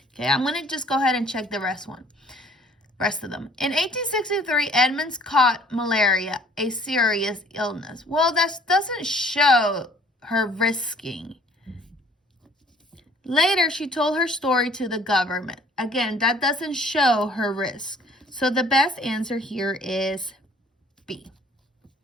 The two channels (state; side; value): normal; both; correlation 0.55